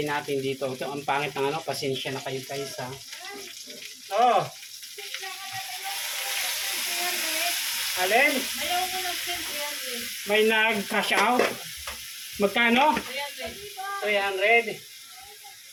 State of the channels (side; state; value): both; identical; correlation 1.00